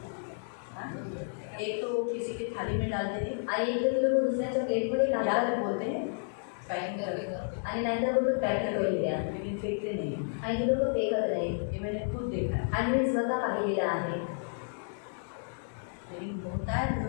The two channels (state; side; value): silent; right; digital silence